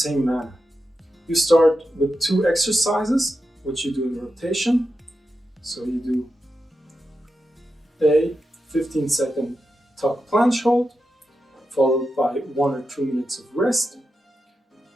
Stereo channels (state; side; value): normal; both; correlation 0.88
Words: manner. You start with 2 exercises, which you do in rotation. So you do a 15-second tuck planche hold, followed by 1 or 2 minutes of rest,